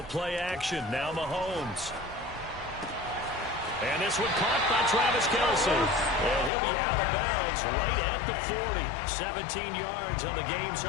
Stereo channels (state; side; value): drops out; right; at 6.5 s